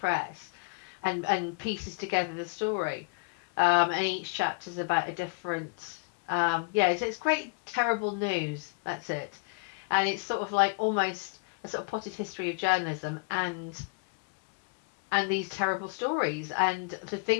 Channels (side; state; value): right; quieter; 31.1 dB